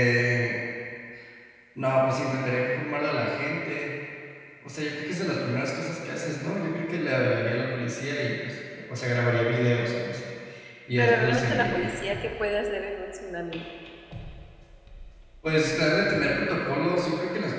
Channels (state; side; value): identical; both; correlation 1.00